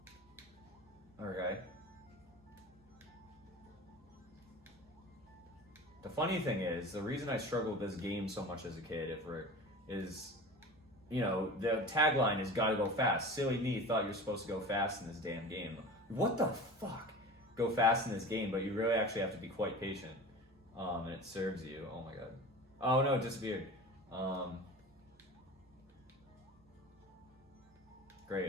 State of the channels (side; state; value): both; normal; correlation 0.35